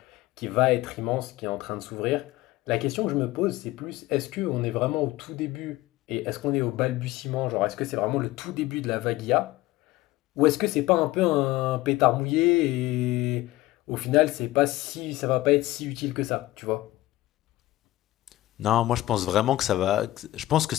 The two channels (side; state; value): right; quieter; 17.2 dB